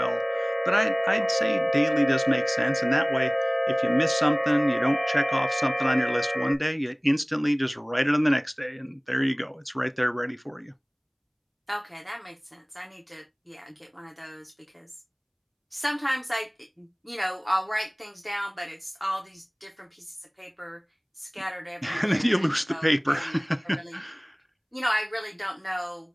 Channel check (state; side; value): identical; both; correlation 1.00